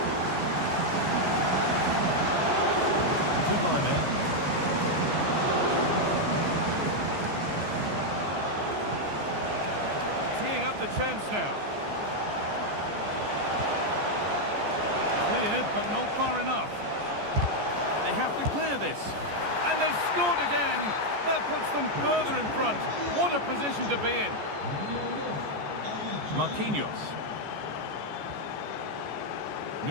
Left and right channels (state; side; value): late; left; 14 ms